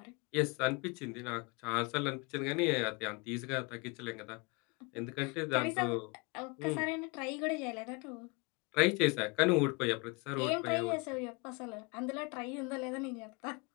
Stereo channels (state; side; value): quieter; right; 29.1 dB